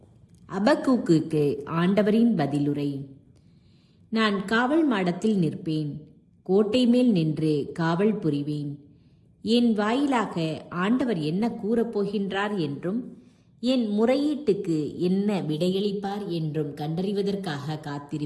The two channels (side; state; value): both; identical; correlation 1.00